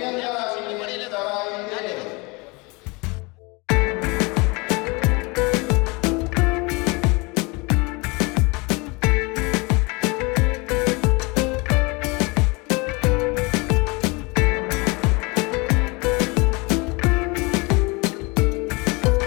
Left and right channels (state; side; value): quieter; right; 27.2 dB